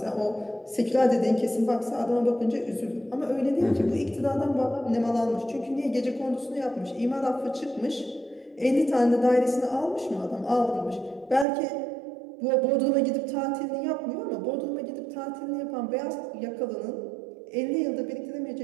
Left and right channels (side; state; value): left; drops out; at 11.5 s